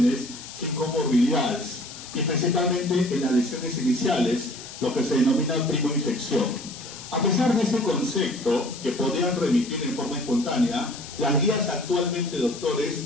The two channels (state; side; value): noise; left; hiss, 14 dB below the sound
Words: sin comorbilidades, y principalmente en las lesiones iniciales, lo que se denomina primoinfección. A pesar de ese concepto, que podrían remitir en forma espontánea, las guías actualmente, doctores,